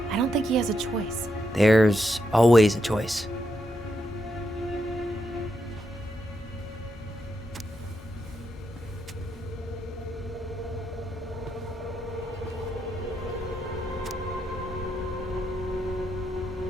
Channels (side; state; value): both; normal; correlation 0.82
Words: I don't think he has a choice. There's always a choice.